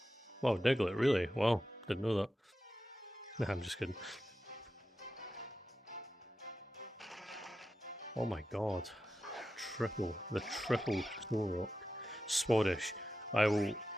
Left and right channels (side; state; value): both; normal; correlation 0.91